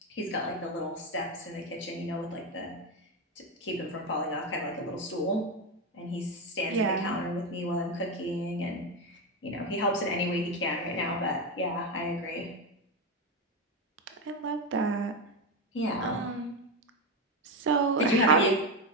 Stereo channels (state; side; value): normal; both; correlation 0.12